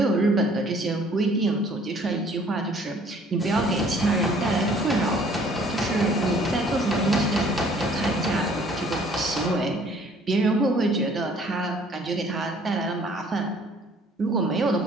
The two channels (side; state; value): both; normal; correlation 0.57